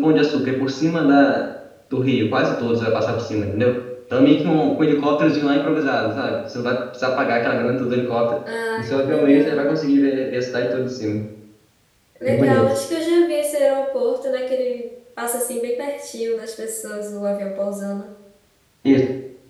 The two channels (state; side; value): identical; both; correlation 1.00